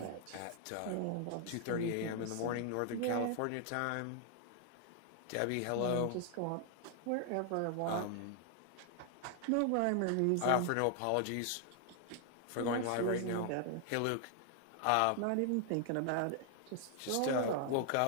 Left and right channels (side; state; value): both; different; correlation 0.00